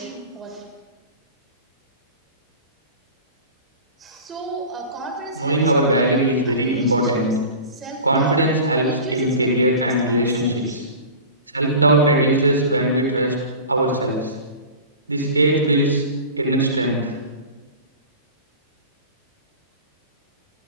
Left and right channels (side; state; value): both; inverted; correlation -0.36